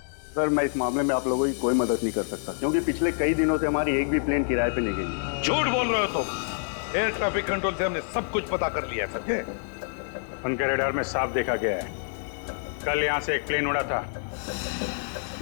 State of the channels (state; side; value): silent; right; digital silence